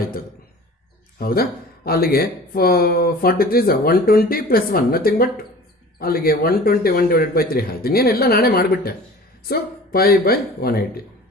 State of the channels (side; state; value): both; normal; correlation 0.42